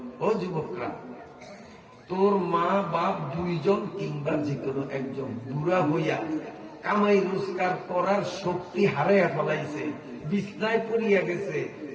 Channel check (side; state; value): both; identical; correlation 1.00